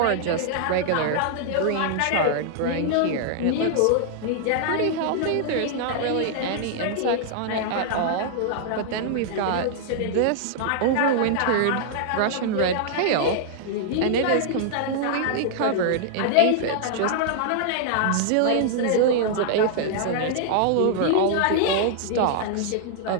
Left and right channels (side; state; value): both; different; correlation -0.01